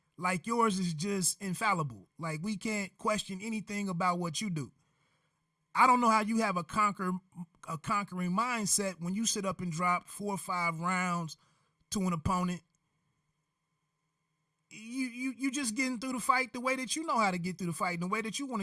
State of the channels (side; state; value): both; identical; correlation 1.00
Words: Like yours is just infallible. Like we can't question anything about what you do. I don't know how you have a conquering mindset when you sit up and drop 4 or 5 rounds to an opponent. You just getting through the fight the way that you know how to get through the fight and the way that you want